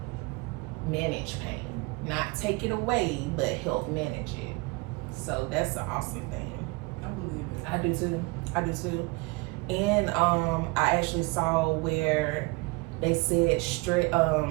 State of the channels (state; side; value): quieter; left; 26.1 dB